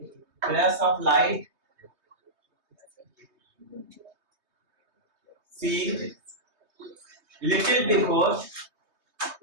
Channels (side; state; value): left; late; 3.2 ms